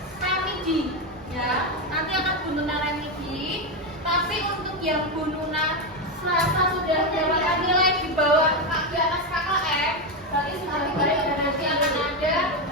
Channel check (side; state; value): both; normal; correlation 0.10